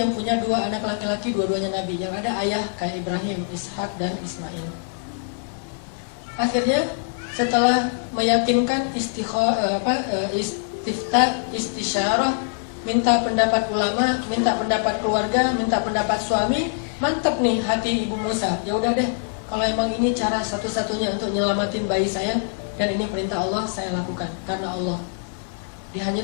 punya 2 anak laki-laki, dua-duanya Nabi. Yang ada ayah kayak Ibrahim, Ishak dan Ismail. Akhirnya setelah meyakinkan istisyarah, minta pendapat ulama, minta pendapat keluarga, minta pendapat suami, mantep nih hati ibu Musa. Ya udah deh, kalau emang ini cara satu-satunya untuk nyelamatin bayi saya dan ini perintah Allah, saya lakukan karena Allah.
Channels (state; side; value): silent; right; digital silence